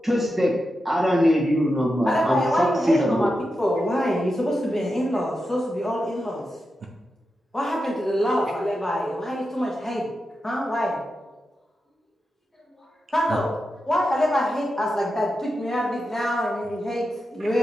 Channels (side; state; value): both; normal; correlation 0.89